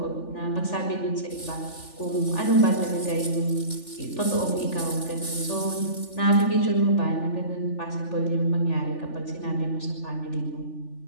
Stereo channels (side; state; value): right; late; 3.4 ms